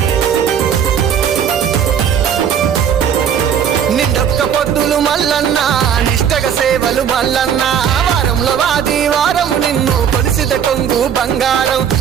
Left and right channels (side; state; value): left; quieter; 8.4 dB